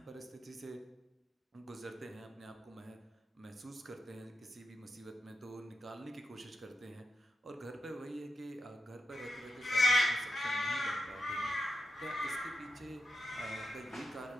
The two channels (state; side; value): normal; both; correlation 0.88